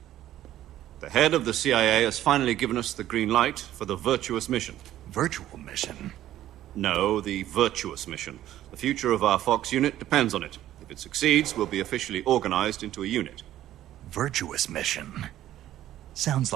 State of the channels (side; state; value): left; quieter; 13.1 dB